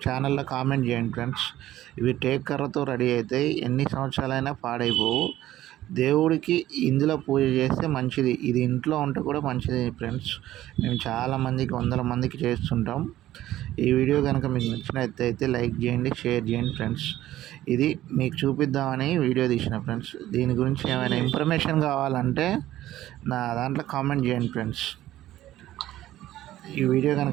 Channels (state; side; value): quieter; left; 14.2 dB